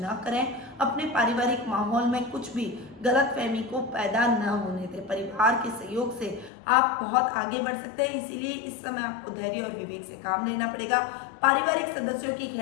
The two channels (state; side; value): drops out; right; at 6.5 s